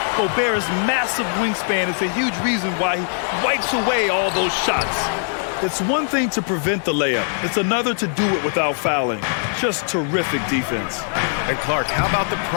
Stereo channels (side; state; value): right; silent; digital silence